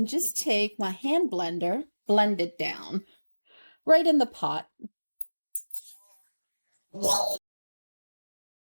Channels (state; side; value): inverted; both; correlation -1.00